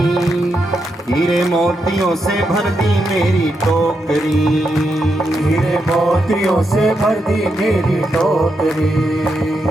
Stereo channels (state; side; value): normal; both; correlation 0.83